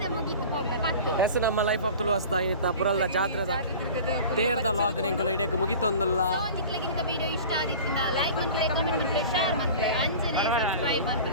ಮುಗಿತು ಹೋಗ್ಲ ಪತ್ತು ಹೆಸ್ ನಮ್ಮ ಲೈಫ್ ಆಫ್ ತುಳುವಸ್ತಾ ಇನ್ನಿತ್ತ ಪುರಲ್ಲ ಜಾತ್ರೆದ ತೇರ್ದ ಲಾಗ್ ನೆಂಕಲು ಇಡಕ್ಕೆ ಮುಗಿತೊಂದುಲ್ಲ ನಿಕ್ಲಗಿಂತ ವಿಡಿಯೋ ಇಷ್ಟ ಆದಿತ್ತಿಂದ ಲೈಕ್ ಮಾಡ್ತಾರೆ ಕಮೆಂಟ್ ಮಾಡ್ತಾರೆ ಶೇರ್ ಮಾಡ್ತಾರೆ ಅಂಚನೆ ಸಬ್ಸ್ಕ್ರೈಬ್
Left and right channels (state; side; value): inverted; both; correlation -0.38